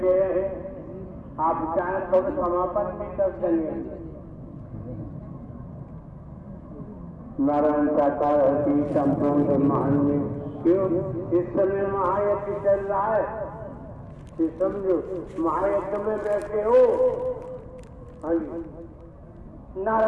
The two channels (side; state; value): both; identical; correlation 1.00